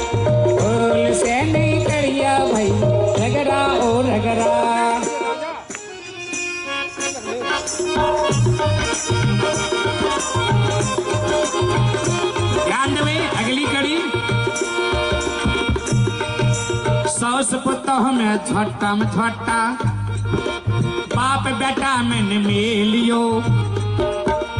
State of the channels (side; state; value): both; identical; correlation 1.00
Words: भूल से नहीं करिया भैया रगड़ा ओ रगड़ा। ध्यान देवे अगली कड़ी। सौस पुतोह में झट्टा में झट्टा, बाप बेटा में मिलियो,